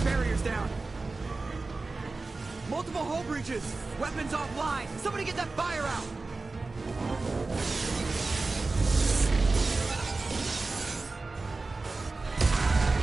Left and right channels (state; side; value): quieter; left; 3.6 dB